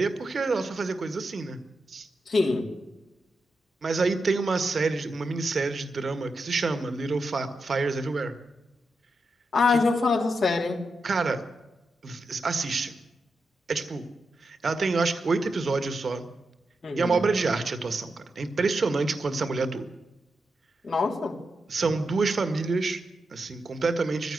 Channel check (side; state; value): both; normal; correlation 0.87